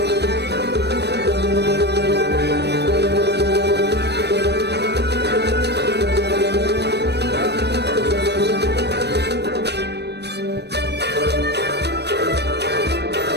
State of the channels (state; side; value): late; left; 0.49 ms